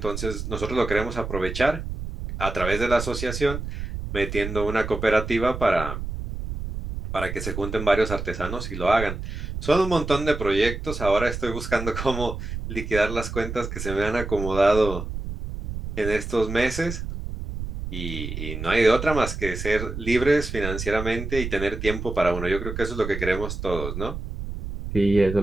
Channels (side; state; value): right; noise; rumble, 6 dB below the sound